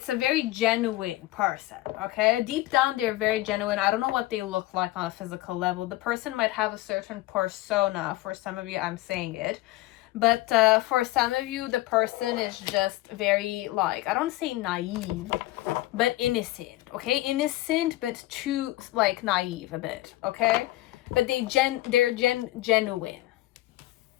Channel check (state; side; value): quieter; right; 17.4 dB